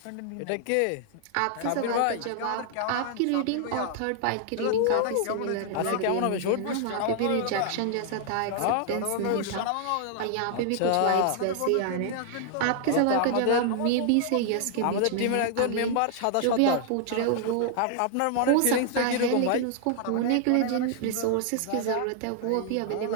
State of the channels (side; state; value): both; different; correlation 0.00